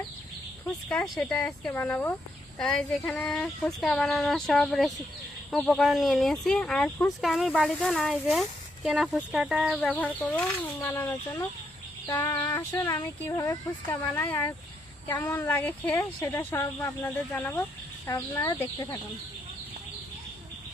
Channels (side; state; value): both; normal; correlation 0.77